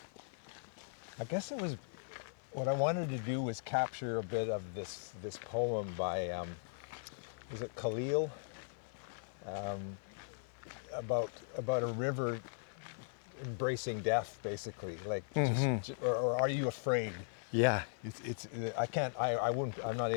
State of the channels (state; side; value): silent; right; 52 dB below the other